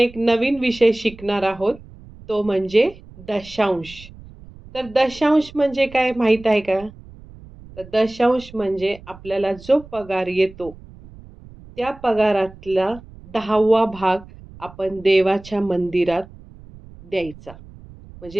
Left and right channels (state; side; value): noise; right; rumble, 20 dB below the sound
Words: नवीन विषय शिकणार आहोत, तो म्हणजे दशांश. तर दशांश म्हणजे काय माहीत आहे का? तर दशांश म्हणजे आपल्याला जो पगार येतो, त्या पगारातला 10वा भाग आपण देवाच्या मंदिरात द्यायचा.